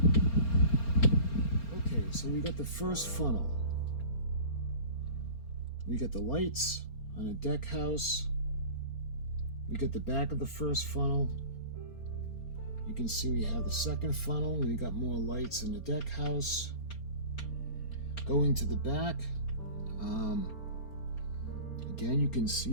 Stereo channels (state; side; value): late; right; 4.3 ms